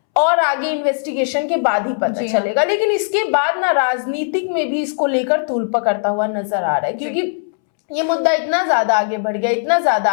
और आगे इन्वेस्टिगेशन के बाद ही पता चलेगा। लेकिन इसके बाद ना राजनीतिक में भी इसको लेकर तूल पकड़ता हुआ नजर आ रहा है, क्योंकि ये मुद्दा इतना ज्यादा आगे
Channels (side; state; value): right; silent; 67 dB below the other